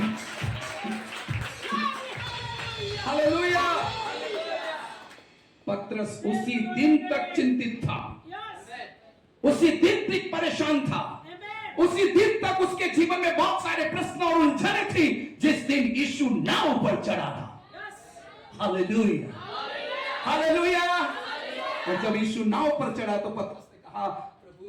हालेलुया। पत्रस उसी दिन तक चिंतित था, उसी दिन तक परेशान था, उसी दिन तक उसके जीवन में बहुत सारे प्रश्न और उलझने थी, जिस दिन यीशु नाव पर चढ़ा था। Hallelujah, hallelujah. और जब यीशु नाव पर चढ़ा तो पतरस ने कहा,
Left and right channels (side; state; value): both; identical; correlation 1.00